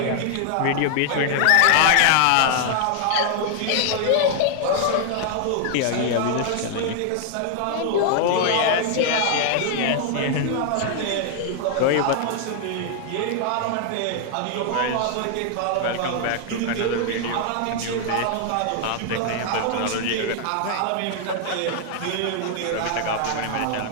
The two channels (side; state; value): both; different; correlation 0.00